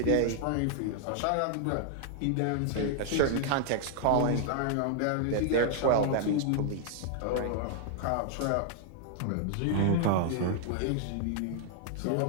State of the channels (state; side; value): different; both; correlation 0.00